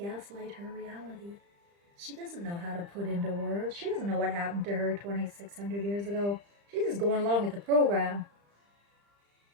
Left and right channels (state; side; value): late; left; 35 ms